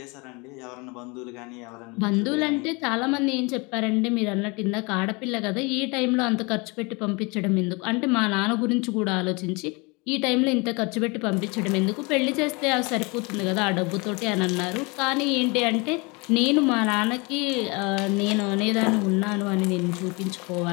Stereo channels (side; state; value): right; quieter; 28.0 dB